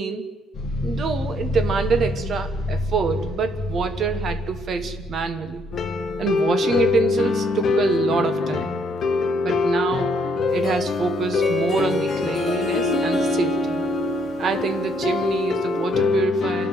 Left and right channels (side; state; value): both; normal; correlation 0.69